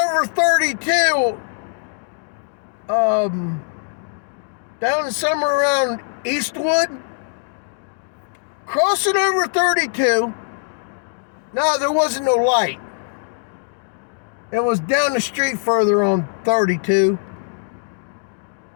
32, down somewhere around Eastwood. Crossing over 32. No, there wasn't no light. It was down the street further on 32.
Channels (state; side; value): silent; right; digital silence